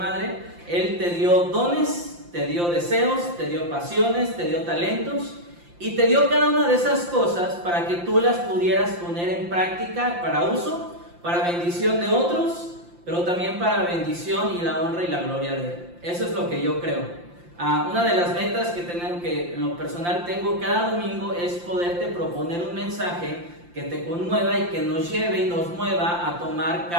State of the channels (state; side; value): late; left; 5.8 ms